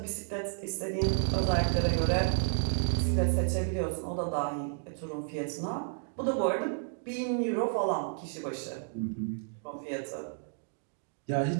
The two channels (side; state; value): left; silent; digital silence